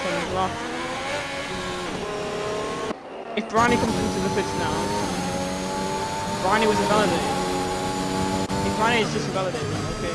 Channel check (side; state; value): both; identical; correlation 1.00